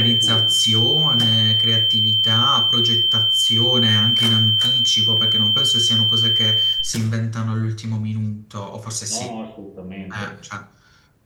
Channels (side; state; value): both; identical; correlation 1.00